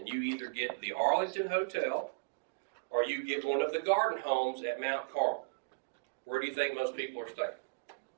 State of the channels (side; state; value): left; quieter; 32.0 dB